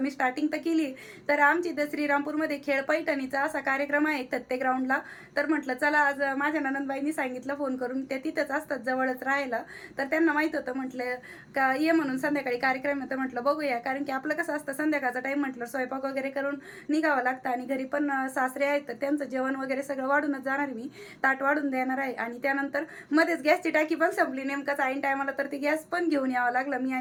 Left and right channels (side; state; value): both; identical; correlation 1.00